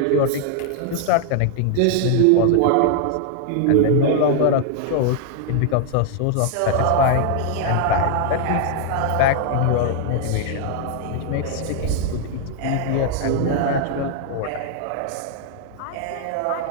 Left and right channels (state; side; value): different; both; correlation 0.00